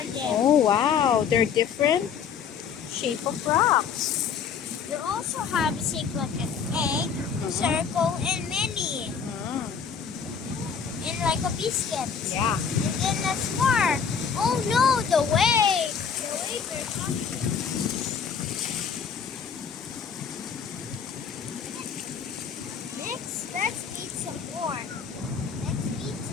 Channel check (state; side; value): quieter; right; 6.7 dB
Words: there? Oh, wow. They're different shape of rocks. They also have shape like an egg, circle, and many. And like a biscuit. Yeah. And then there's more. Oh no, the waves. The waves are coming. Next, let's eat some more.